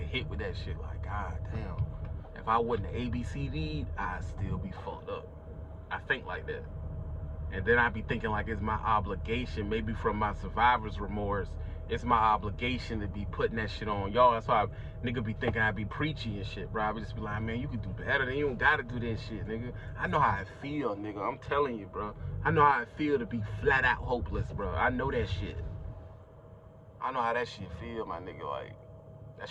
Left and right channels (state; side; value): identical; both; correlation 1.00